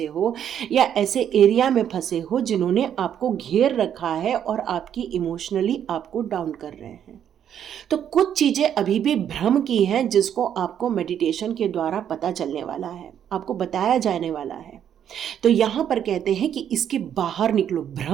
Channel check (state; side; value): quieter; left; 9.4 dB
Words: हो, या ऐसे एरिया में फंसे हो जिन्होंने आपको घेर रखा है और आपकी इमोशनली आपको डाउन कर रहे हैं। तो कुछ चीजें अभी भी भ्रम की हैं जिसको आपको मेडिटेशन के द्वारा पता चलने वाला है, आपको बताया जाने वाला है। तो यहां पर कहते हैं कि इसके बाहर निकलो,